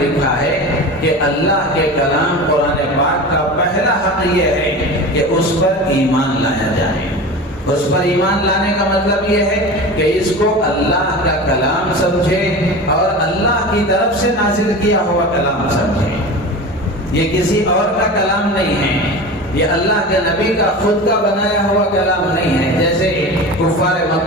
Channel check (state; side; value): normal; both; correlation 0.31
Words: ہے کہ اللہ کے کلام قرآن پاک کا پہلا حق یہ ہے کہ اس پر ایمان لایا جائے۔ اس پر ایمان لانے کا مطلب یہ ہے کہ اس کو اللہ کا کلام سمجھے اور اللہ کی طرف سے نازل کیا ہوا کلام سمجھے۔ یہ کسی اور کا کلام نہیں ہے، یہ اللہ کے نبی کا خود کا بنایا ہوا کلام نہیں ہے۔ جیسے کفار